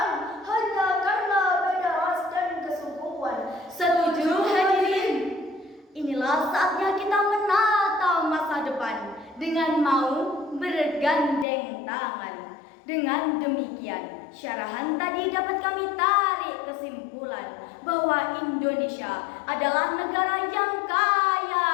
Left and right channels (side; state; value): right; drops out; at 11.5 s